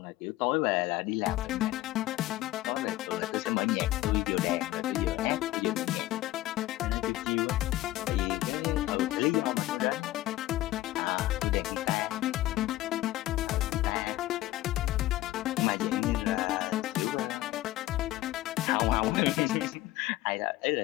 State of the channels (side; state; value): right; quieter; 16.2 dB